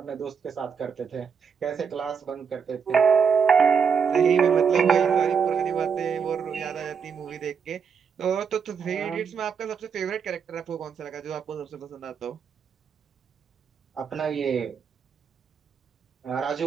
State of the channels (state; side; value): quieter; left; 6.5 dB